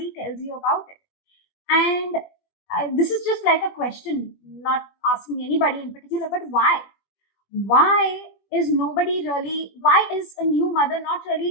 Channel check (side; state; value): right; late; 21 ms